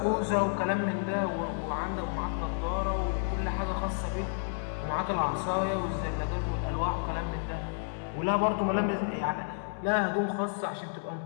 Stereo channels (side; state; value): right; silent; digital silence